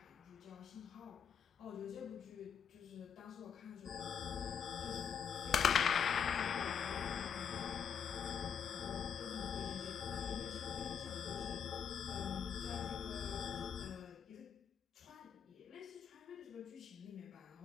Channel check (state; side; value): quieter; right; 7.3 dB